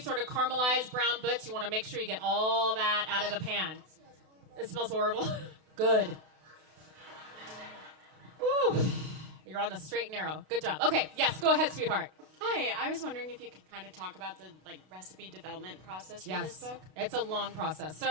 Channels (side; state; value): left; late; 32 ms